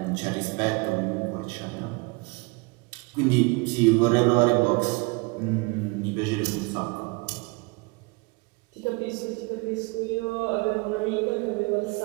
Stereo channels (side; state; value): left; quieter; 28.1 dB